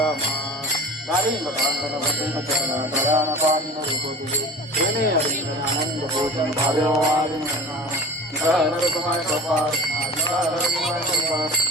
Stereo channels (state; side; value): normal; both; correlation 0.38